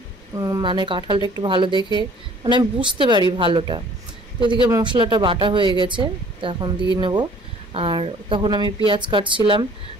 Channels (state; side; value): normal; both; correlation 0.54